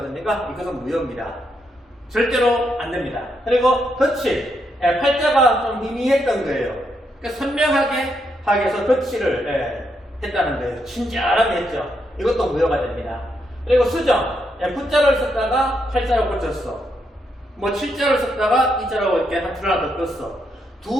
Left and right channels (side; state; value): both; normal; correlation 0.79